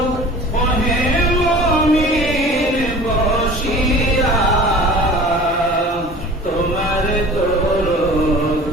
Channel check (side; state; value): both; normal; correlation 0.42